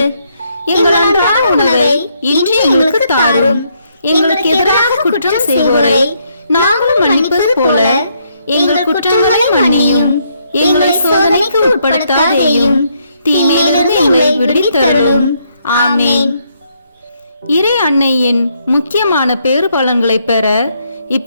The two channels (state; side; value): inverted; both; correlation -0.74